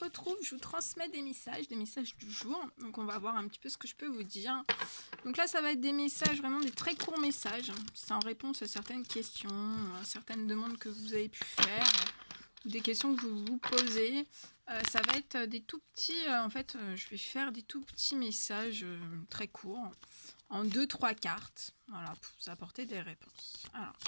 retrouve, je vous transmets des messages du jour. Donc on va voir un petit peu ce que je peux vous dire. Donc là, ça va être des messages, vraiment des très courts messages. C'est en réponse à certaines questions, à certaines demandes que vous avez pu faire, ou des questions que vous vous posez. Ça va être des tout petits, je vais faire des tout petits messages très courts, en 2-3 cartes, voilà, pour vous apporter des réponses. Alors,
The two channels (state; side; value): inverted; both; correlation -1.00